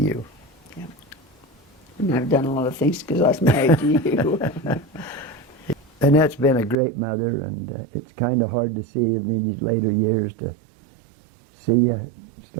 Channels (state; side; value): drops out; left; at 6.8 s